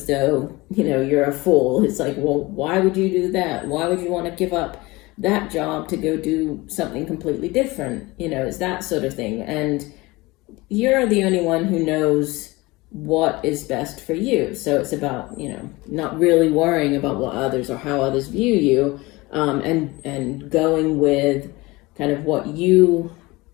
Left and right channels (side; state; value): right; quieter; 22.1 dB